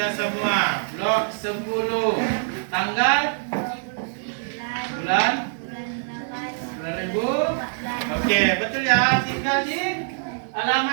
semua. Blok 10. Tanggal? Bulan? Ribu. Oke, betul ya. Tinggal di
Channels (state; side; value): silent; left; digital silence